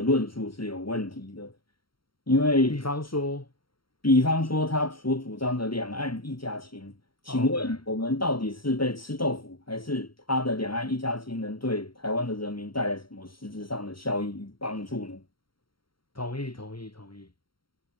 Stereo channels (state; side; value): late; right; 0.73 ms